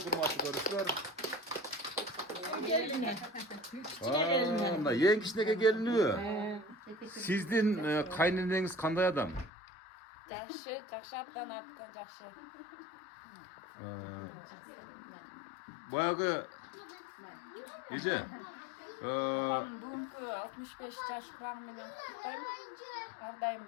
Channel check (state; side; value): drops out; right; at 9.5 s